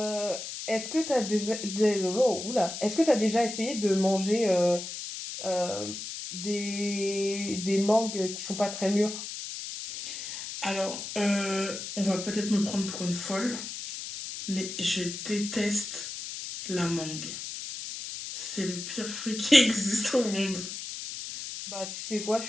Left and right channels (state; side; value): noise; left; hiss, 8 dB below the sound